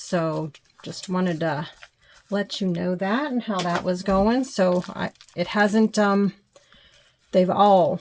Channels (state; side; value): identical; both; correlation 1.00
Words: just wanted to let you know that and how that was going. So it hasn't, they've all,